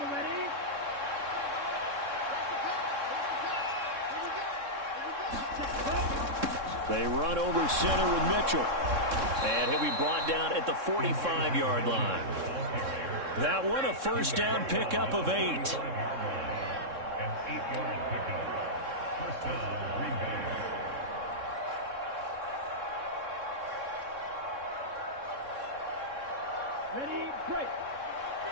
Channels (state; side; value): late; left; 3.6 ms